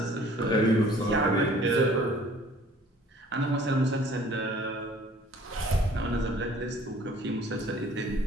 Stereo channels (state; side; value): normal; both; correlation 0.53